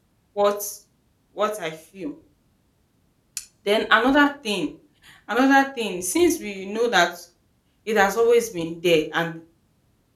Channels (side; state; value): both; identical; correlation 1.00